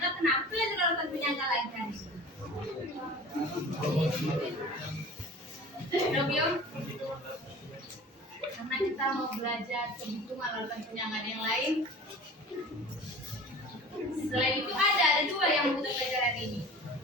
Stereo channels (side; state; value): both; normal; correlation 0.40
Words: Kenapa belajar lautan penyangga lagi hari ini? Robio, karena kita mau belajar perhitungan lautan penyangga yang lain. Selain itu ada dua yang mau kita belajar hari ini,